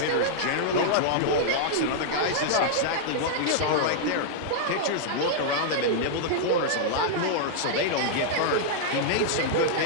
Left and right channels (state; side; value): different; both; correlation -0.02